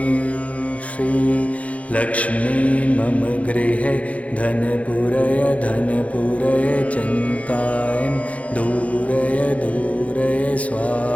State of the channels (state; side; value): late; right; 0.066 ms